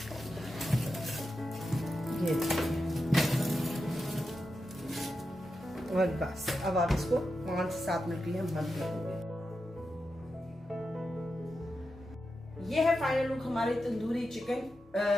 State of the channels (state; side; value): normal; both; correlation 0.89